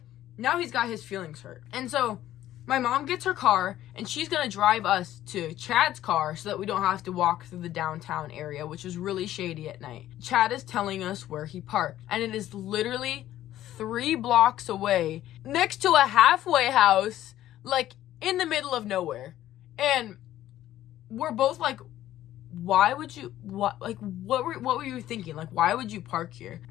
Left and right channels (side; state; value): right; quieter; 13.2 dB